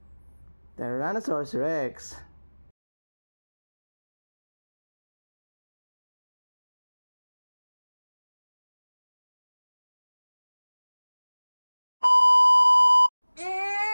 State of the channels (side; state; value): both; inverted; correlation -1.00